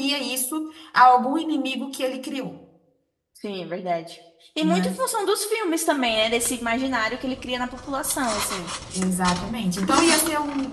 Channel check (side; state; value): both; identical; correlation 1.00